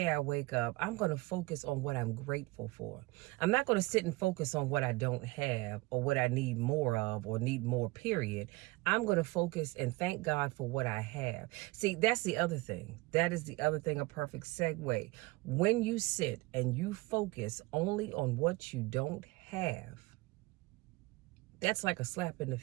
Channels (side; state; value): left; quieter; 22.2 dB